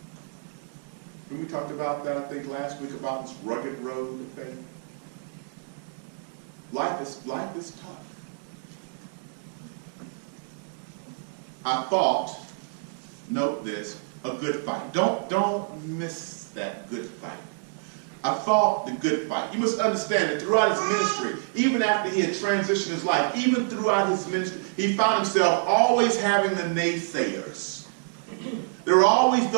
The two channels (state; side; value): silent; left; digital silence